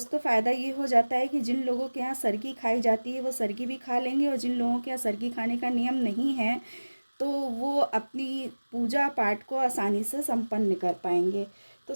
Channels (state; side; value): inverted; both; correlation -1.00